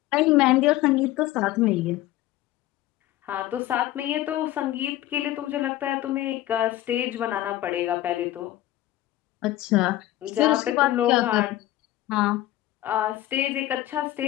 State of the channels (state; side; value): quieter; right; 15.0 dB